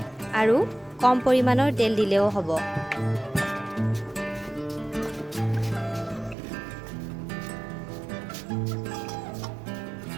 আৰু কম পৰিমাণৰ তেল দিলেও হ'ব।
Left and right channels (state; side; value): drops out; left; at 6.4 s